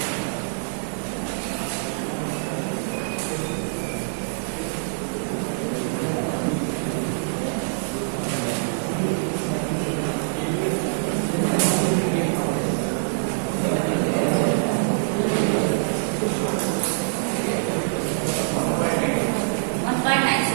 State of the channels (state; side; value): silent; left; digital silence